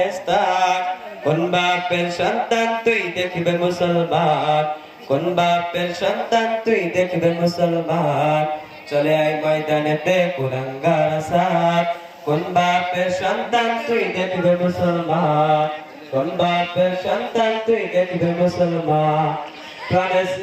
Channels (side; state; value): both; identical; correlation 1.00